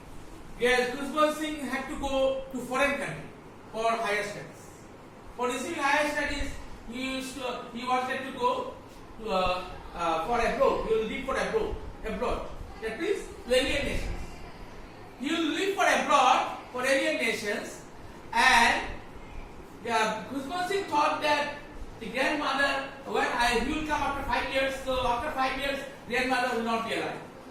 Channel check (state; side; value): identical; both; correlation 1.00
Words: Khusban Singh had to go to foreign country for higher studies. For receiving higher studies, he wanted to go to for abroad. He will live for abroad. That means to alien nations. He will live for abroad for alien nations, and Khusban Singh thought that the grandmother, he will come after 5 years. So after 5 years, grandmother will not be alive.